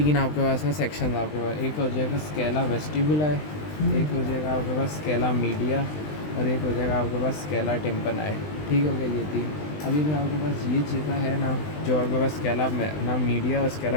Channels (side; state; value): right; late; 20 ms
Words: आपके पास ना सेक्शन आपके पास, एक हो जाएगा स्केला वेस्टिबुला है, एक हो जाएगा आपके पास स्केला मीडिया, और एक हो जाएगा आपके पास स्केला टिम्पनाई। ठीक हो गया ये 3। अभी जो आपके पास ये जगह है ना, जो आपके पास स्केला ना मीडिया और